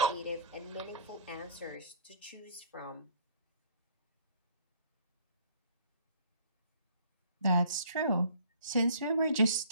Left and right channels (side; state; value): both; inverted; correlation -0.54